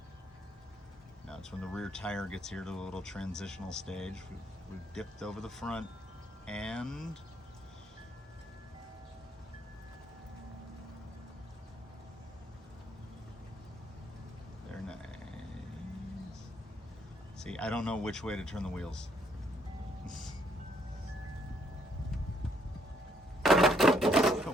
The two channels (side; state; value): both; normal; correlation 0.69